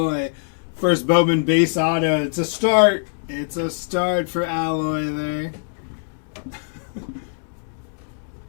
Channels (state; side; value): silent; right; digital silence